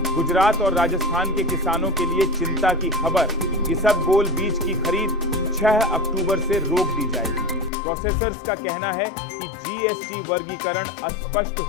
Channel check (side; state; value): right; drops out; at 7.7 s